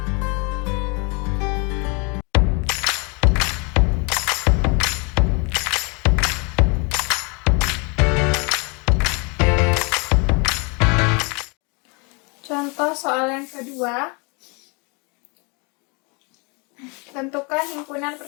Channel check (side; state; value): right; quieter; 31.5 dB